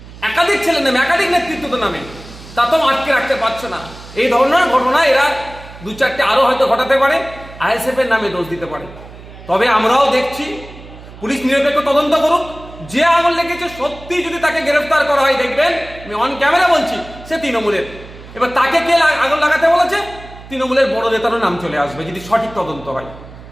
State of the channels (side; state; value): right; noise; hum, 17 dB below the sound